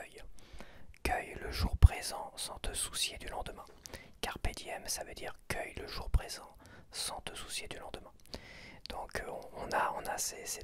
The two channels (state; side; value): identical; both; correlation 1.00